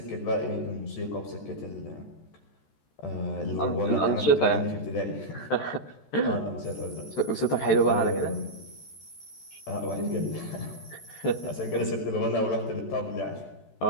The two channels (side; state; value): right; late; 14 ms